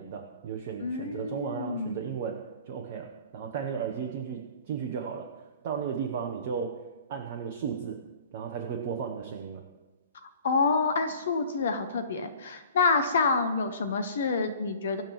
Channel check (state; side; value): inverted; both; correlation -0.46